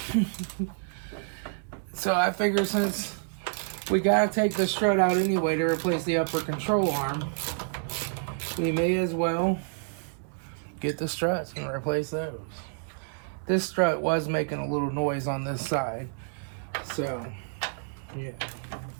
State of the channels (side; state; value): left; silent; 59 dB below the other